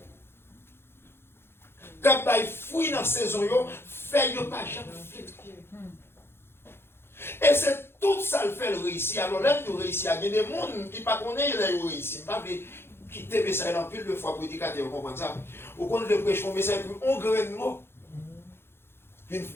Quand il fouille dans la saison, fait pas jamais fait. Et c'est tout ça le fait le réussir. Alors là, nous réussissons. Il y a des gens qui ne connaissent pas le réussir. Pas quitter le message dans pile de fois pour prédicateur, vous comprenez ça? Ou quand le prêche un message, on graine de mots. Une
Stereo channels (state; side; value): late; right; 0.11 ms